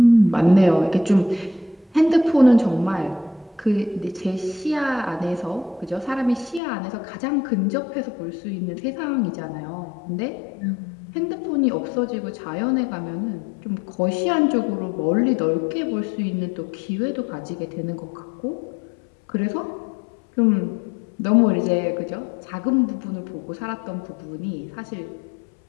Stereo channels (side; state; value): right; drops out; at 6.6 s